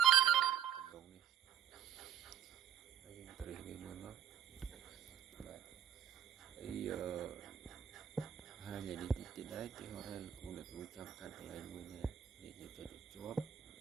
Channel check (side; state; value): left; quieter; 9.3 dB